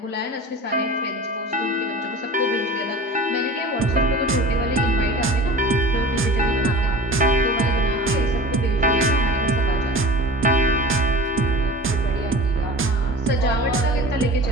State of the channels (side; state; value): both; normal; correlation 0.38